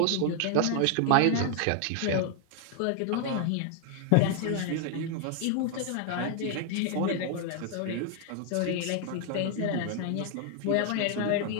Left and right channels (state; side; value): different; both; correlation 0.00